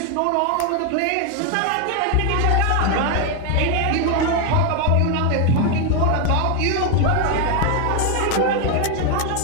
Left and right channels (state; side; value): different; both; correlation 0.01